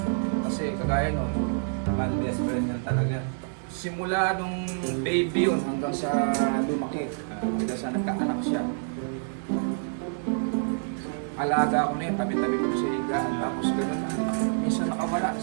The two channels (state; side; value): silent; left; digital silence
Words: Kasi kagaya nun, Man, best friend yan talaga. simula nung baby yun hanggang sa lumaki, hanggang sa nagkaanak siya. Alaga ko na yun, tabi-tabi ko sa higaan, tapos gano'n na. Minsan nakawala.